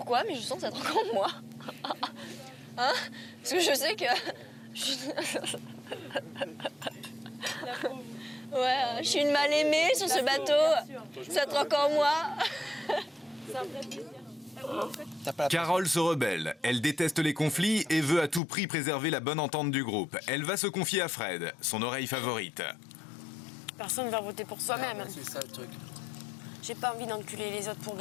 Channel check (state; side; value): drops out; right; at 18.4 s